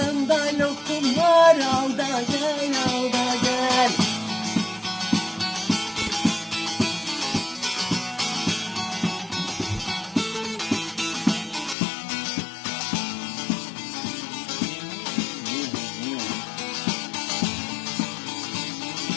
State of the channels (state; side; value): drops out; right; at 11.8 s